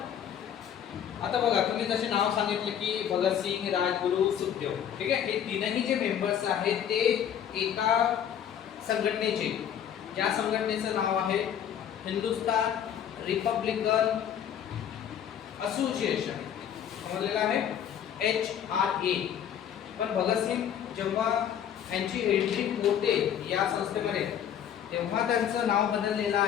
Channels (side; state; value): right; quieter; 9.3 dB